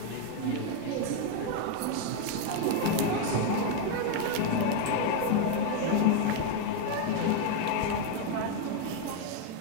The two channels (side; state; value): both; different; correlation 0.01